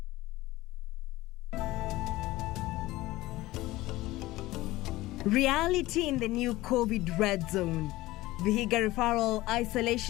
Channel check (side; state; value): right; quieter; 18.2 dB